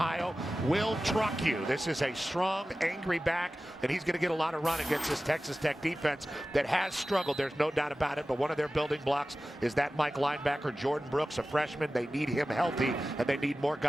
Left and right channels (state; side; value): normal; both; correlation 0.95